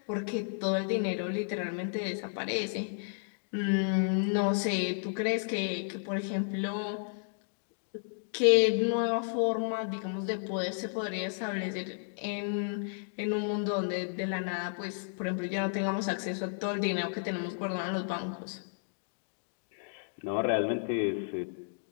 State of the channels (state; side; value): silent; right; digital silence